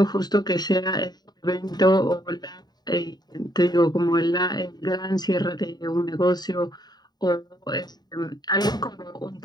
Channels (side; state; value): right; late; 0.20 ms